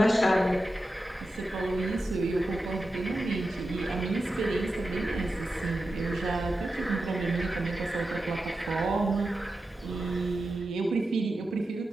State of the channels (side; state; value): both; normal; correlation 0.91